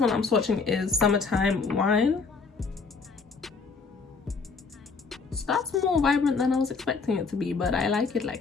I'm swatching is Summertime Wine. So that's more vibrant than I was expecting it to be, but I like it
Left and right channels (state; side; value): quieter; right; 4.7 dB